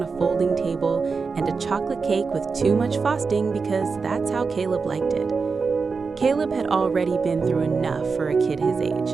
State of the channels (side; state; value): left; quieter; 4.8 dB